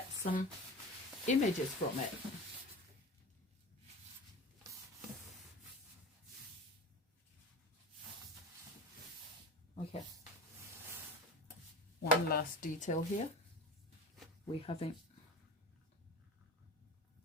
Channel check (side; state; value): both; normal; correlation 0.32